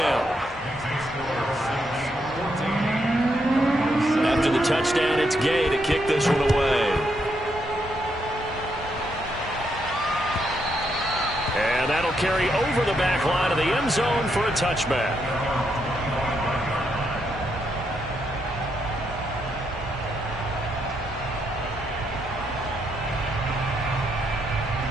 After the touchdown, it's Gay to kick this one away. And that'll carry over the back line of the end zone for a touchback.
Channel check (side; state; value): both; normal; correlation 0.78